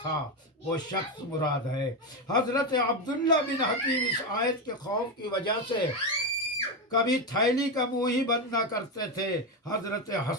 تھا، وہ شخص مراد ہے۔ حضرت عبداللہ بن حکیم اس آیت کے خوف کی وجہ سے کبھی تھیلی کا منہ ہی بند نہ کرتے تھے۔ حضرت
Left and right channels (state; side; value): normal; both; correlation 0.12